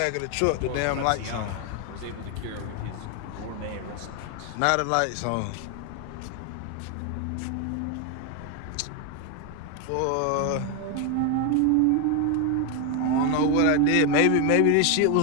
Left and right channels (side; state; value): both; different; correlation 0.01